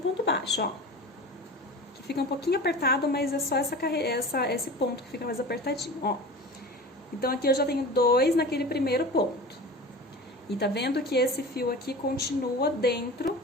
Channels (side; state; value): both; normal; correlation 0.34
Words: baixo, ó. Que fica um pouquinho apertado, mas é só esse ponto que fica mais apertadinho, ó. Então, aqui eu já tenho 2 naquele primeiro ponto. E tá vendo que esse fio aqui continua dentro,